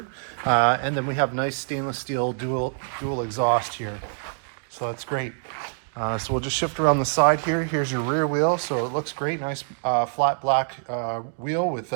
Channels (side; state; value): left; silent; digital silence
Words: And then we have nice stainless steel dual exhaust here. So that's great. So we'll just shift around the side here. Here's your rear wheel. So it looks great. Nice flat black wheel with